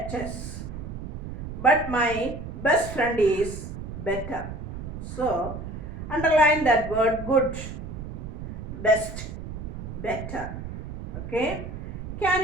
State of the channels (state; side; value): noise; right; rumble, 8 dB below the sound